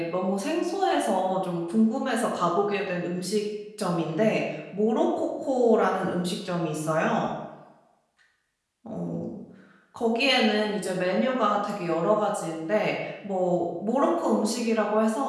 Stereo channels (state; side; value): identical; both; correlation 1.00